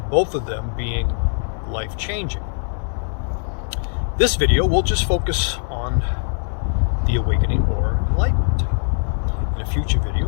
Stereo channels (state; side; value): silent; right; 62 dB below the other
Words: both of them being life-changing. This video will just focus on the awakening or enlightenment. In a future